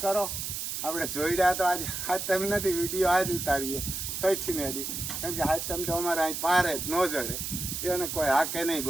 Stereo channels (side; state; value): right; noise; hiss, 4 dB below the sound